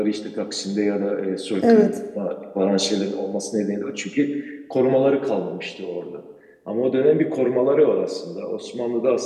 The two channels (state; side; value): identical; both; correlation 1.00